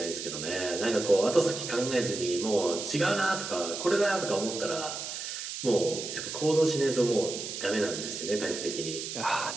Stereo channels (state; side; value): noise; right; hiss, 6 dB below the sound